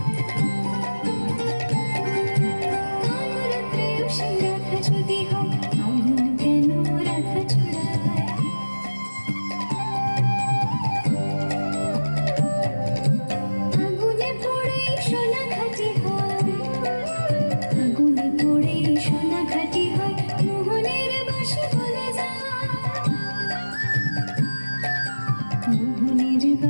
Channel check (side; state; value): both; inverted; correlation -1.00